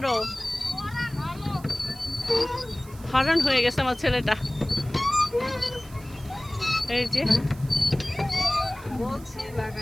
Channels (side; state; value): right; noise; hiss, 22 dB below the sound